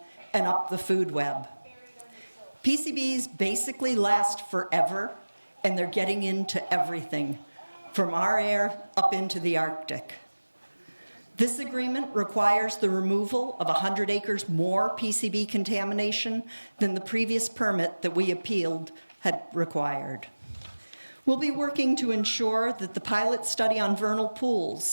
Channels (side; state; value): both; inverted; correlation -1.00